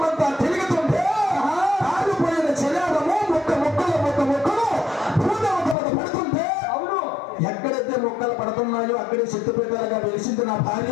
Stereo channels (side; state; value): right; drops out; at 5.8 s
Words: తిరుగుతుంటే కాలిపోయిన చెలారము ముక్కలు భూదేవత పడుతుంటే ఎక్కడైతే మొక్కలు పడుతున్నాయో అక్కడే శక్తిపీఠాలుగా వెలిసింది నా